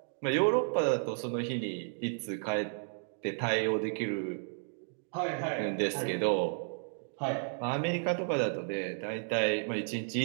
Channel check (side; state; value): left; silent; 56 dB below the other